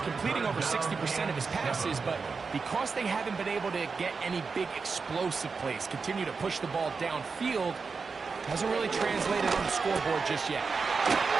completing over 60% of his passes, but because they haven't been able to get any big explosive plays, continue to push the ball downfield, hasn't really translated on the scoreboard just yet. He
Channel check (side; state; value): left; quieter; 4.8 dB